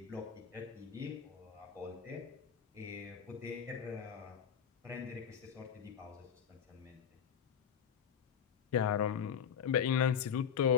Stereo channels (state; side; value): quieter; right; 7.8 dB